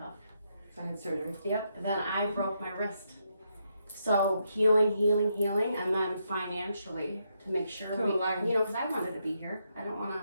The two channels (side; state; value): both; inverted; correlation -0.79